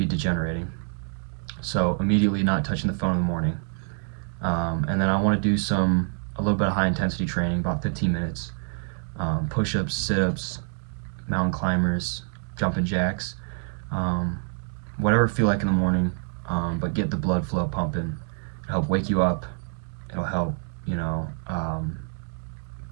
degenerating. So immediately not touching the phone in the morning, and then I want to do a little bit of high intensity training, about 15 minutes, push-ups, sit-ups, mountain climbers, jumping jacks, um, whatever I feel like in the morning, but get the blood flow pumping. It'll help wake you up. It'll help,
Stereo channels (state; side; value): silent; left; 58 dB below the other